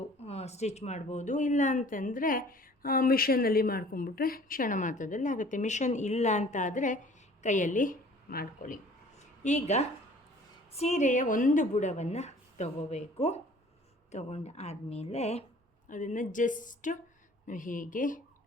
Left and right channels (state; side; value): normal; both; correlation 0.51